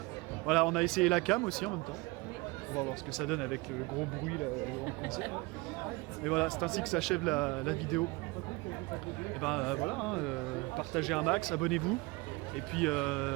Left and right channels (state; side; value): quieter; left; 24.6 dB